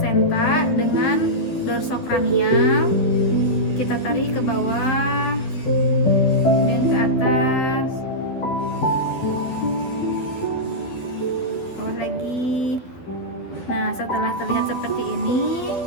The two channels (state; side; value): late; right; 12 ms